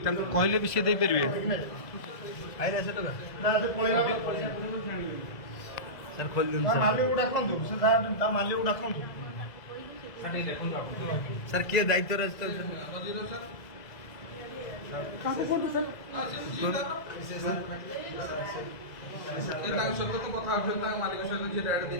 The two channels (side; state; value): right; late; 2.0 ms